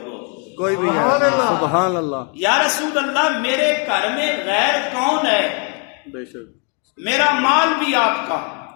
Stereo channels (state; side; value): quieter; right; 38.3 dB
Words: کوئی بھی نہیں. سبحان اللہ. یا رسول اللہ میرے گھر میں غیر کون ہے؟ بے شک. میرا مال بھی آپ کا،